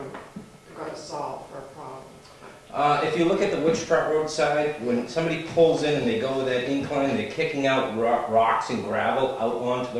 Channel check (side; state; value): both; identical; correlation 1.00